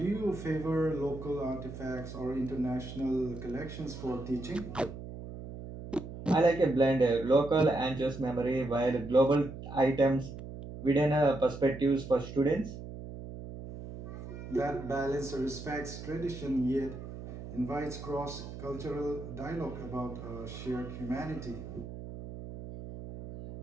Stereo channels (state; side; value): noise; right; hum, 11 dB below the sound